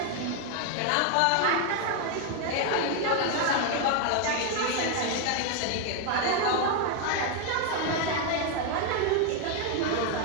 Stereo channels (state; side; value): different; both; correlation 0.01